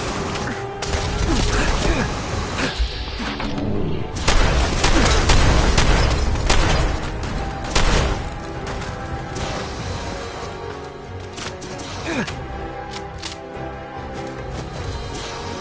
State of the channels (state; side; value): identical; both; correlation 1.00